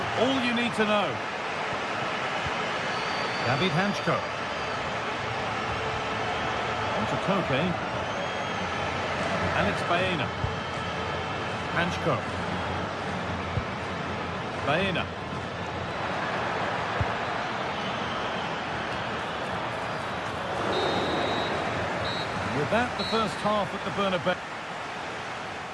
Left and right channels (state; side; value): identical; both; correlation 1.00